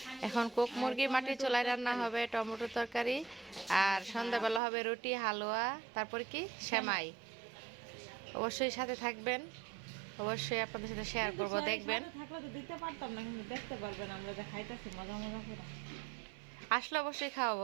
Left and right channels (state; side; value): drops out; left; at 4.6 s